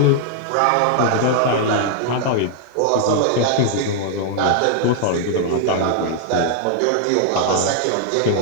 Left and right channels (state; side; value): different; both; correlation -0.01